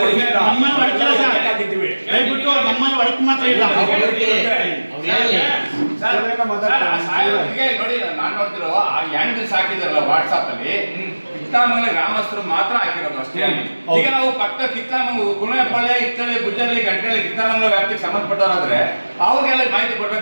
ನೋಡಿ, ನಾನು ನೋಡ್ತಿರೋ ಆ ಹ್ಯಾಂಡಲ್ಸ್ ಹಾಕಿದಾರಲ್ಲ ವಾಟ್ಸಾಪ್ ಅಲ್ಲಿ, ಕಿತ್ತಾಮಂಗಲ ಗ್ರಾಮಸ್ಥರು ಮಾತ್ರ ಹಾಕಿರೋದು ಅಷ್ಟೇ. ಈಗ ನಾವು ಪಕ್ಕ ಕಿತ್ತಾಮಂಗಲ, ಕುಣೆಪಾಳ್ಯ, ಇತ್ತಳ್ಳಿ, ಗುಜ್ಜಳ್ಳಿ, ಗಂಟೆಳ್ಳಿ, ಕಿತ್ತಾಮಂಗಲ ವ್ಯಾಪ್ತಿಗೆ ಸಂಬಂಧಪಟ್ಟವರಾದ್ರೆ ಅವ್ರಿಗೆಲ್ಲ ಮಾಹಿತಿ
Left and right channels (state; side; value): inverted; both; correlation -1.00